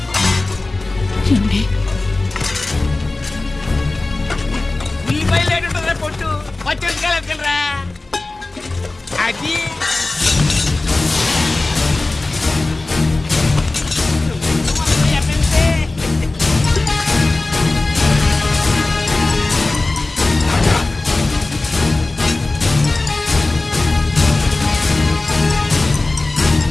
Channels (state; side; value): quieter; right; 3.1 dB